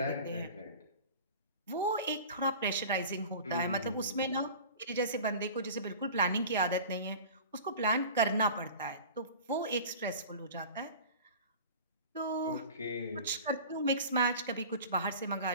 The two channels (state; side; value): inverted; both; correlation -0.38